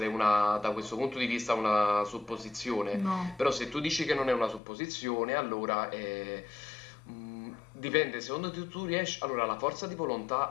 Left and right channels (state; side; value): drops out; right; at 4.6 s